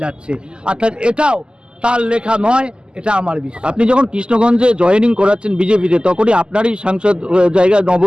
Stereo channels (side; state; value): left; late; 0.048 ms